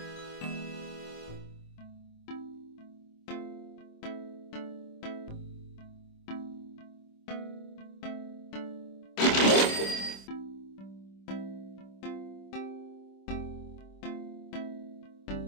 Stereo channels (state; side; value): late; right; 26 ms